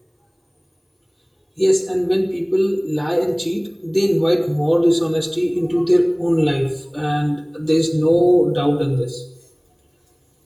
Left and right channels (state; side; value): identical; both; correlation 1.00